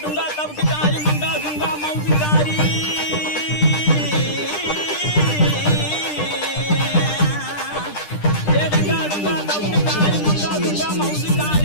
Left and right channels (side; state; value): right; late; 10 ms